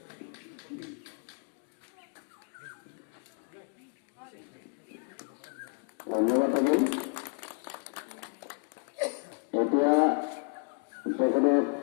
ধন্যবাদ থাকিল। এতিয়া তেখেতক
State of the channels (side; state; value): right; quieter; 38.1 dB